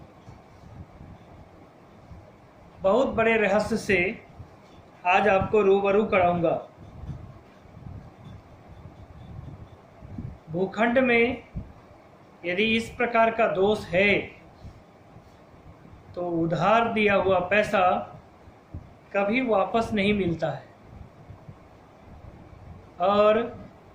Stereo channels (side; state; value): both; identical; correlation 1.00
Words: बहुत बड़े रहस्य से आज आपको रूबरू कराऊंगा। भूखंड में यदि इस प्रकार का दोष है तो उधार दिया हुआ पैसा कभी वापस नहीं मिलता है, और